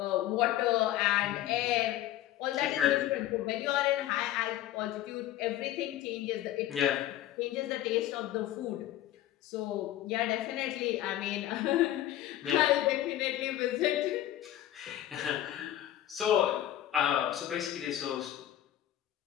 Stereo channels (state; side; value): quieter; right; 13.2 dB